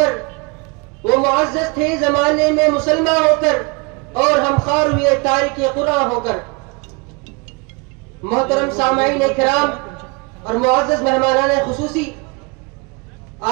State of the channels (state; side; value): quieter; left; 29.8 dB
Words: کر اور ہم خوار ہوئے تارک قرآن ہو کر. محترم سامعین کرام اور معزز مہمانان خصوصی،